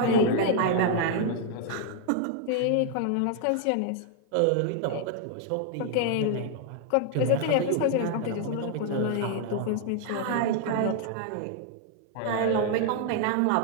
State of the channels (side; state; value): both; different; correlation 0.00